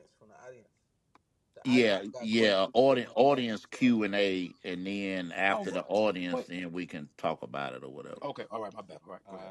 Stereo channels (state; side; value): identical; both; correlation 1.00